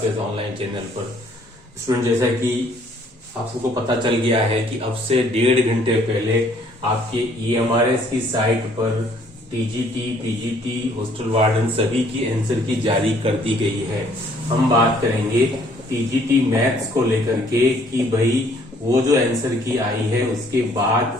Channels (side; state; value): both; normal; correlation 0.62